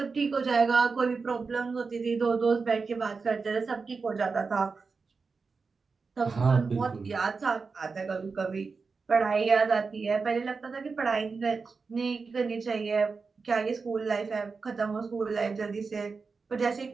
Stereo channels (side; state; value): left; quieter; 4.7 dB